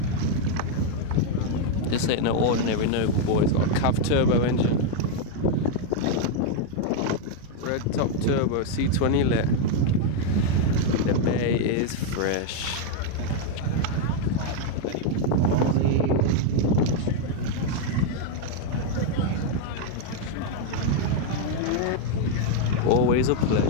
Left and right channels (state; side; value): different; both; correlation 0.01